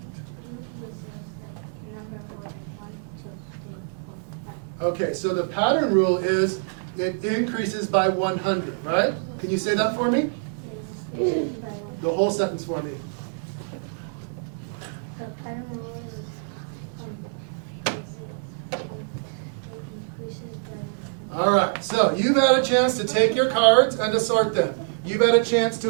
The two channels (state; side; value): silent; left; digital silence